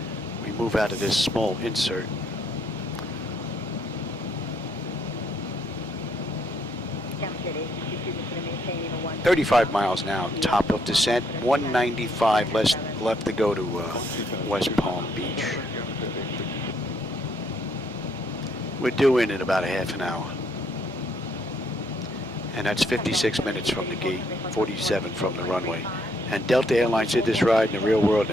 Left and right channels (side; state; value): both; normal; correlation 0.71